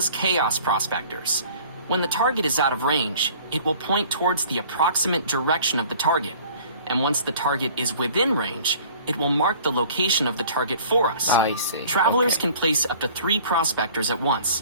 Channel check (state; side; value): inverted; both; correlation -0.50